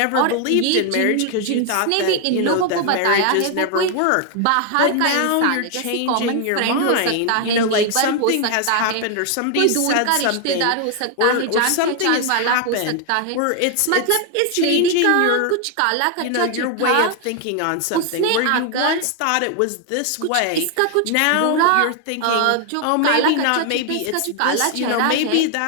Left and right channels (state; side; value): different; both; correlation 0.00